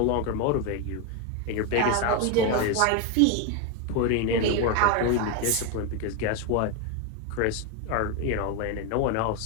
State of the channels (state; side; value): different; both; correlation 0.02